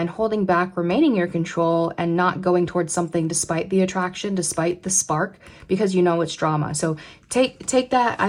holding back, remaining in your control, and not going towards something despite the attraction, despite the spark, because you know it's drama. So take that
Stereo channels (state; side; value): identical; both; correlation 1.00